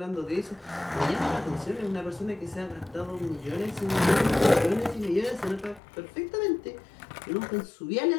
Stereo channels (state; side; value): drops out; right; at 5.8 s